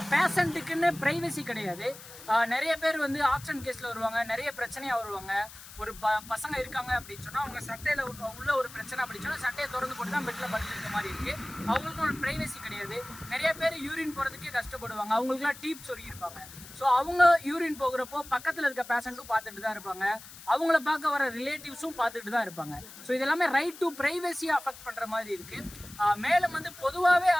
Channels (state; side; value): noise; left; hiss, 16 dB below the sound